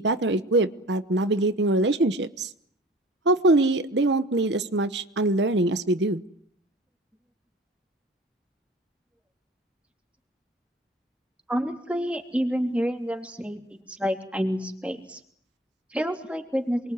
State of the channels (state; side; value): normal; both; correlation 0.45